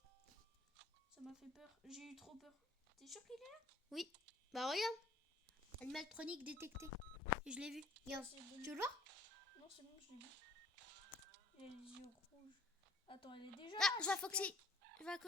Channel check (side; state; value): right; quieter; 3.2 dB